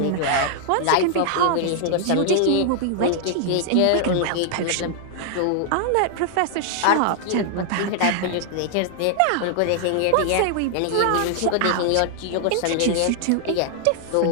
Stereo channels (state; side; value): different; both; correlation 0.00